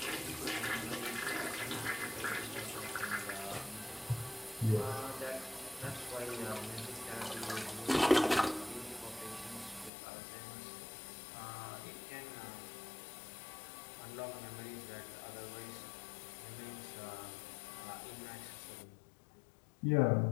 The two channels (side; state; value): right; drops out; at 9.9 s